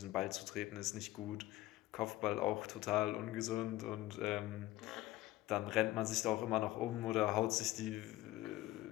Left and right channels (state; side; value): quieter; right; 16.7 dB